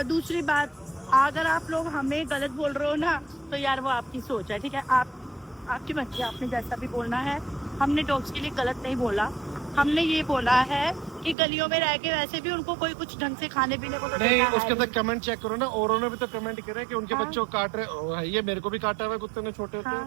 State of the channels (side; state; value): left; drops out; at 11.4 s